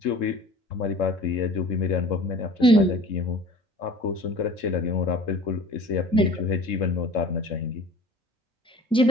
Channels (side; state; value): both; normal; correlation 0.45